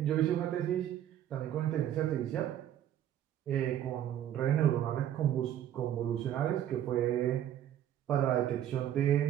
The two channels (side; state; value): left; quieter; 11.2 dB